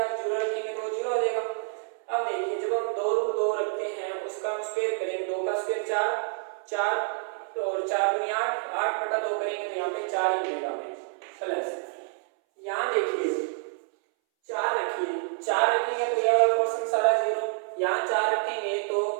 0 रखेंगे तो 0 हो जाएगा। अब देखिए जब हम 2√2 रखते हैं उसका हम स्क्वायर करेंगे, 2 का स्क्वायर 4 और 4 दूनी 8, 8/2 करेंगे तो यहाँ पे 4 ही मिलेगा हमें, प्लस यहाँ देखिए 4 रखिए, 4 रखेंगे तो यह वाला पोर्शन सारा 0, यहाँ 4 रखेंगे तो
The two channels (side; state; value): left; silent; 59 dB below the other